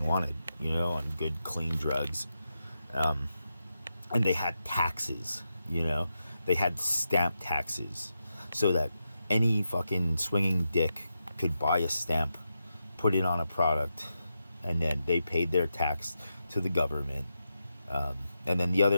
wanted, on good clean drugs. And they had taxes, they had stamp taxes, so that any fucking swinging dick could buy a stamp, put it on a product, and then they paid their tax to the government. And then the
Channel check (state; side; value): inverted; both; correlation -0.87